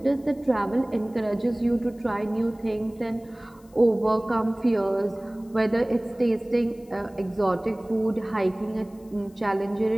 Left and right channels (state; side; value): noise; left; hiss, 30 dB below the sound